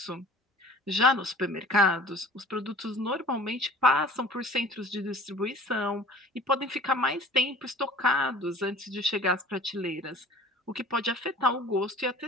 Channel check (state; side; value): normal; both; correlation 0.46